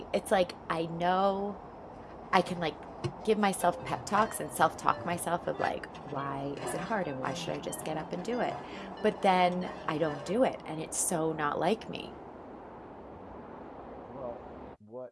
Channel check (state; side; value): identical; both; correlation 1.00